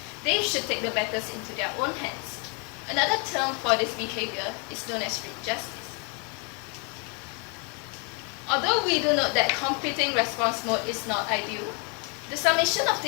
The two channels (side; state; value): right; quieter; 34.9 dB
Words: they should take the matters into their own hands. Another term for this behavior is known as street justice. Although we do note that competing response mode is not ideal, the summation of